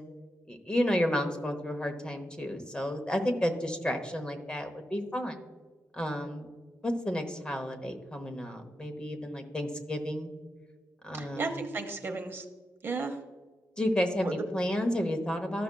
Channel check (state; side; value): normal; both; correlation 0.87